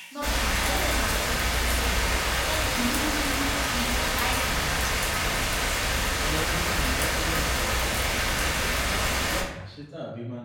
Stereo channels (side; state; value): both; identical; correlation 1.00